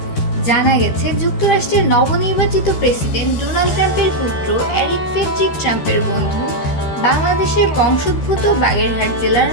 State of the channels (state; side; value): late; right; 13 ms